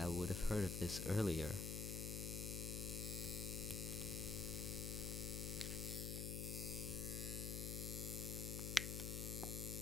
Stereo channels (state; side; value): noise; left; hum, 1 dB below the sound